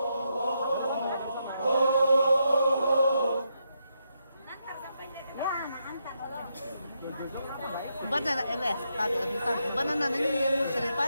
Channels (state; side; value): inverted; both; correlation -0.81